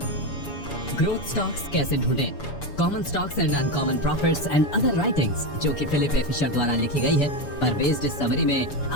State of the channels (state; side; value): late; right; 7.0 ms